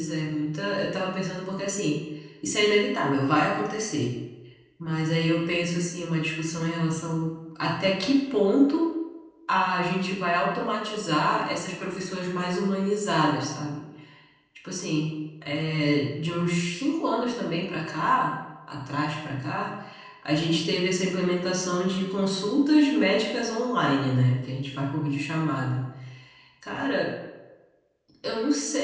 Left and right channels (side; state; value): both; identical; correlation 1.00